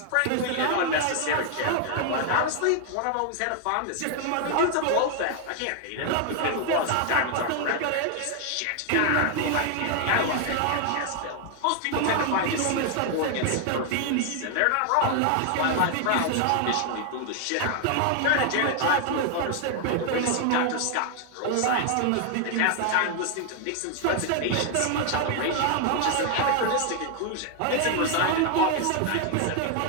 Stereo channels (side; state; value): both; different; correlation 0.00